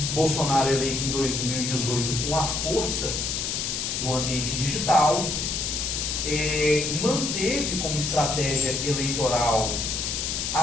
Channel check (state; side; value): noise; left; hiss, 1 dB below the sound